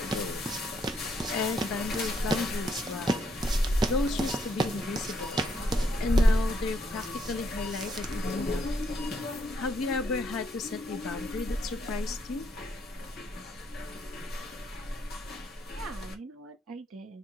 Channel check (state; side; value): normal; both; correlation 0.74